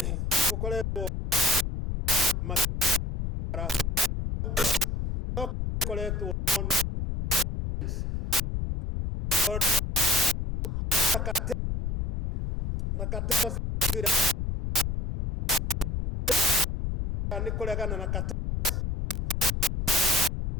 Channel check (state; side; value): noise; left; rumble, 2 dB below the sound